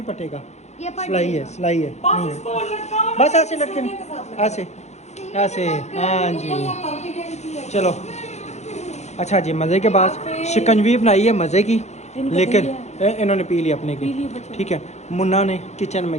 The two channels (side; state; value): right; late; 0.33 ms